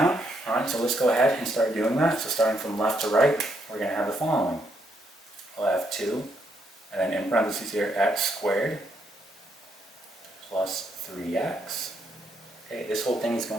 All right, so let's go ahead and start doing that. So starting from left to right, we're going to have the following. We'll have 2, and then in parentheses here, x squared plus 3x. Okay, this whole thing is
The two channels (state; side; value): normal; both; correlation 0.75